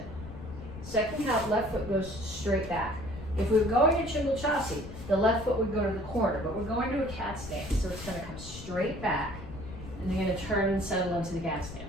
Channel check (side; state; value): left; noise; rumble, 12 dB below the sound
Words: Second count, left foot goes straight back. If we were going to Chungal Chassi, the left foot would go to the corner, but we're going to a cat stance, so it's going to come straight back, and you're going to turn and settle into the cat stance.